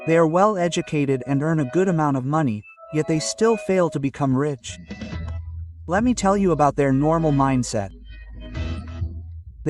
They are well educated and earn a good amount of money, yet they still fail to become rich. Let me tell you about their normal mindset.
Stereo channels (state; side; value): identical; both; correlation 1.00